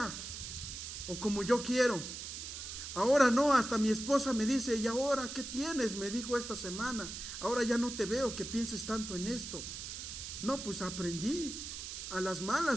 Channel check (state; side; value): noise; right; hiss, 8 dB below the sound